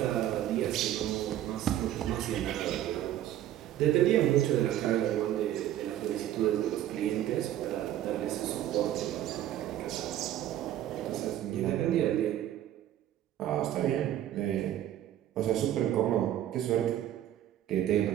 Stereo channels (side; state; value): left; quieter; 12.2 dB